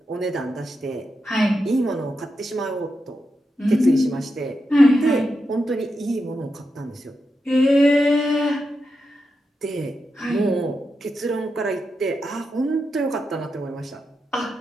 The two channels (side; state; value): both; normal; correlation 0.87